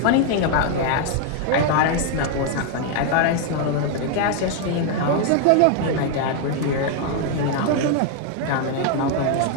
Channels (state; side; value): different; both; correlation 0.00